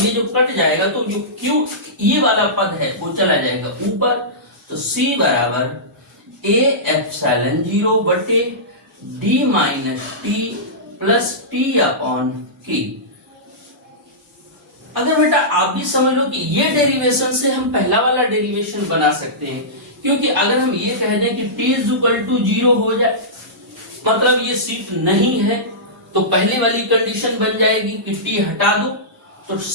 ये जो कट जाएगा तो जो Q ये वाला पद है वो चला जाएगा ऊपर। तो C बराबर A एप्सिलॉन 0 बटे D minus T plus T upon K। अगर बेटा आप भी समझ लो कि ये डेरिवेशन से हम पहला वाला डेरिवेशन बना सकते हैं, क्योंकि अगर हम ये कह दें कि T इज इक्वल टू 0 हो जाए, मतलब ये सीट नहीं है, तो पहले वाली कंडीशन बन जाएगी कि T हटा दो, तो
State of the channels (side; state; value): both; normal; correlation -0.17